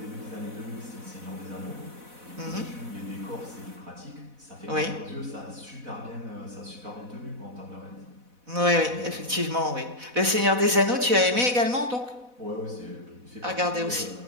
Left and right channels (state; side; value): late; left; 4.1 ms